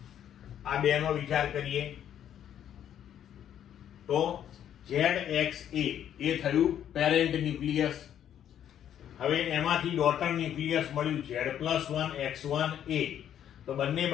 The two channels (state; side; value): quieter; right; 10.1 dB